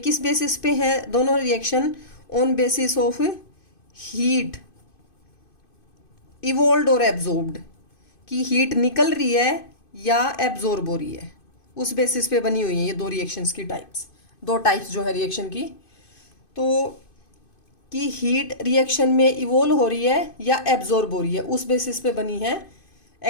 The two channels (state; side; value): late; right; 2.5 ms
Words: बेसिस पे है दोनों रिएक्शन? On basis of heat evolved और एब्जॉर्ब्ड, कि हीट निकल रही है या एब्जॉर्ब हो रही है, उस बेसिस पे बनी हुई है ये दो रिएक्शंस की टाइप्स, दो टाइप्स जो है रिएक्शन की। तो कि हीट रिएक्शन में इवोल्व हो रही है या एब्जॉर्ब हो रही है, उस बेसिस पे बनी है